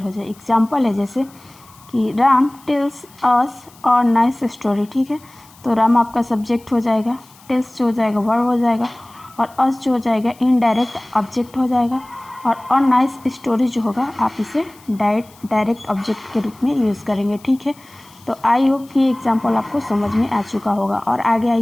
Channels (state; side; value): noise; left; hiss, 26 dB below the sound